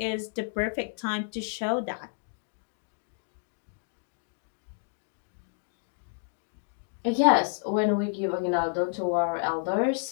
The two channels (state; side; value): silent; right; digital silence